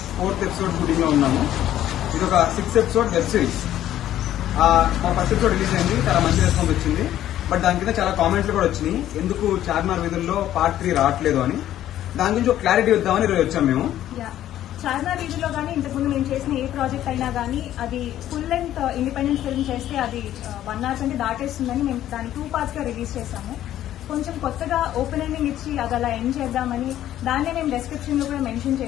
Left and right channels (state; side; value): quieter; right; 12.4 dB